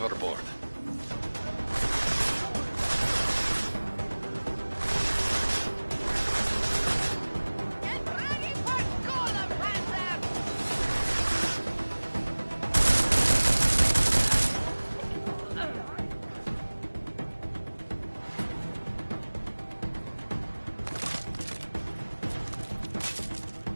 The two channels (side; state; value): both; inverted; correlation -1.00